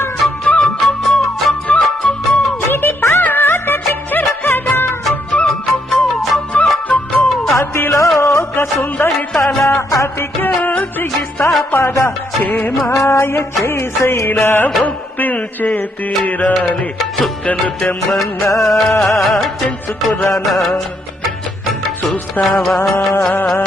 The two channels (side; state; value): both; normal; correlation 0.75